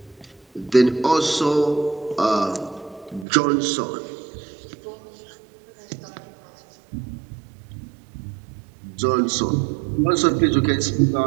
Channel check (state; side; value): drops out; left; at 3.2 s